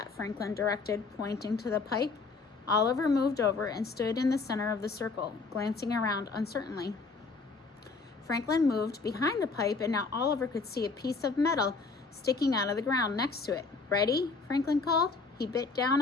Franklin directed, pointing to the pipe. Oliver moved over and stood in the center of the circle, glancing around uncertainly. Franklin moved behind the pipe, and now Oliver could see a piece of metal sticking out of the ground next to it. Ready? Franklin called. He bit down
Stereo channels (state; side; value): quieter; right; 4.2 dB